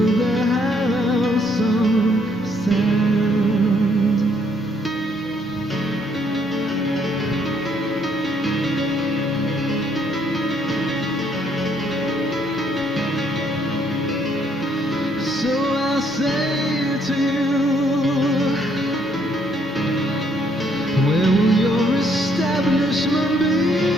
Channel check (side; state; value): both; normal; correlation 0.69